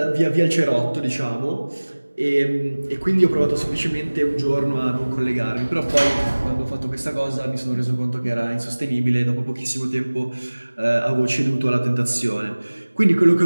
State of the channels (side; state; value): both; inverted; correlation -1.00